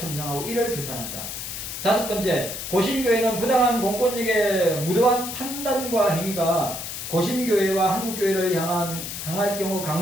이를 규탄한다. 다섯 번째, 고신교회는 부당한 공권력의 무도한 판단과 행위가 고신교회와 한국교회를 향할 경우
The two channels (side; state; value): left; noise; hiss, 7 dB below the sound